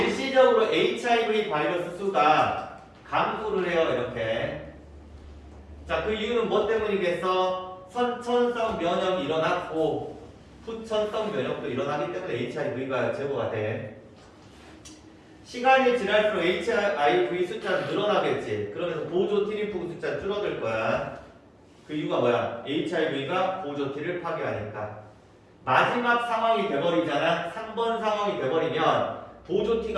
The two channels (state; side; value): identical; both; correlation 1.00